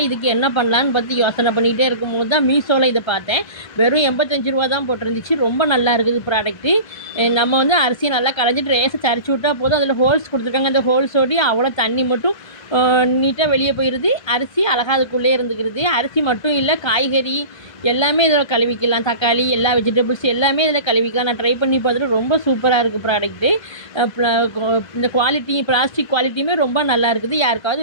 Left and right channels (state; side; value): late; right; 1.5 ms